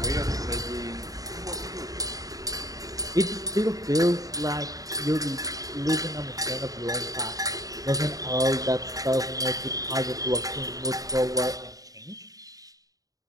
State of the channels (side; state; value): left; late; 0.17 ms